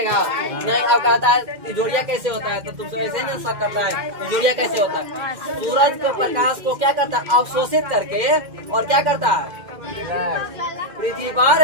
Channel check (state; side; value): late; left; 2.1 ms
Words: नहीं। अब कहता है जोड़िया कैसे होता है, तो तुमसे ऐसे ना शक करता है जोड़िया कैसे होता है। सूरज को प्रकाश को क्या करता है, अवशोषित करके, और क्या करता है, पृथ्वी पर,